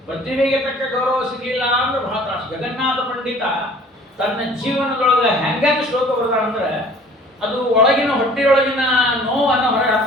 ಪ್ರತಿಭೆಗೆ ತಕ್ಕ ಗೌರವ ಸಿಗಲಿಲ್ಲ ಅಂದ್ರೆ ಬಹಳ ತ್ರಾಸು. ಜಗನ್ನಾಥ ಪಂಡಿತ ತನ್ನ ಜೀವನದೊಳಗೆ ಹೆಂಗೆ ಶ್ಲೋಕ ಬರ್ತಾರಂದ್ರೆ ಅದು ಒಳಗಿನ ಹೊಟ್ಟೆಯೊಳಗಿನ ನೋವನ್ನು ಹೊರಗೆ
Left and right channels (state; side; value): normal; both; correlation 0.50